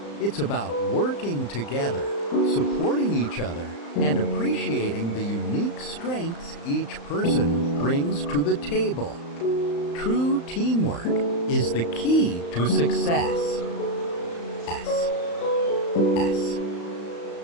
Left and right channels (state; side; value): late; right; 35 ms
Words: It's about working together, supporting each other, and appreciating the unique strengths each person brings to the table. True teamwork is the key to success.